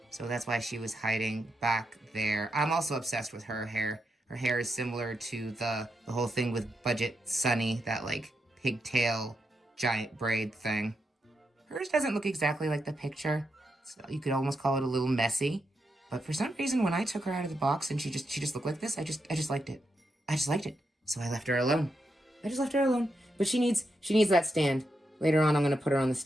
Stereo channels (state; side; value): normal; both; correlation 0.84